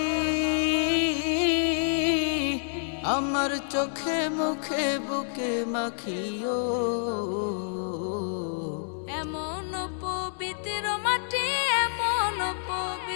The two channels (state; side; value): silent; right; digital silence